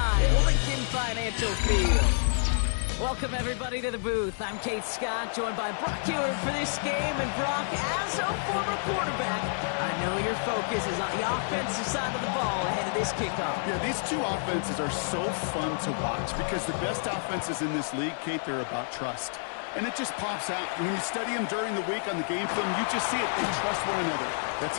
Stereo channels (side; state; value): right; silent; 56 dB below the other